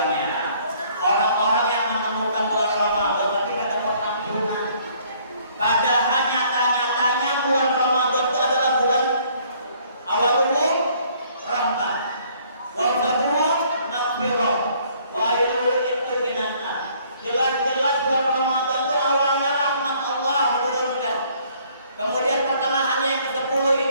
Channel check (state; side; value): inverted; both; correlation -0.61